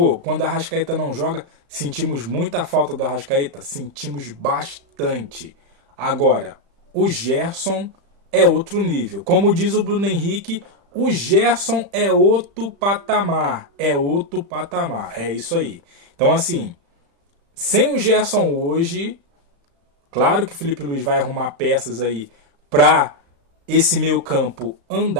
quando a Arrascaeta não joga, sentimos muita falta do Arrascaeta. Sentimos bastante. Agora, o Gerson é outro nível. Como diz o Bruno Henrique, o Gerson é outro patamar. É outro patamar. É isso aí. Então, assim, sem o Gerson hoje, claro que o Felipe Luiz vai arrumar peças aí para esse meio campo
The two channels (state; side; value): late; left; 35 ms